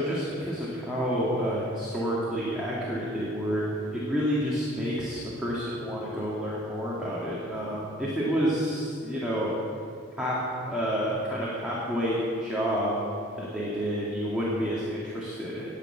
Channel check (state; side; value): normal; both; correlation 0.52